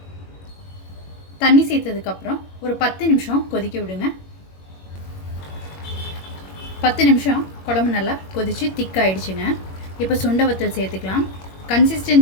தண்ணி சேர்த்ததுக்கப்புறம் ஒரு 10 நிமிஷம் கொதிக்க விடுங்க. 10 நிமிஷம் குழம்பு நல்லா கொதித்து திக்காயிடுச்சுங்க. இப்போ சுண்டவத்தல் சேர்த்துக்கலாம்.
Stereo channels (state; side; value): late; right; 21 ms